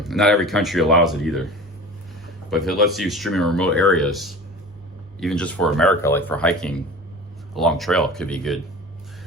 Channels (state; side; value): normal; both; correlation 0.37